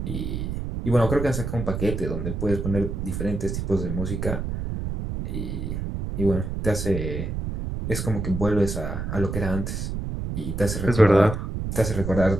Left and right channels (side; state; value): right; noise; rumble, 4 dB below the sound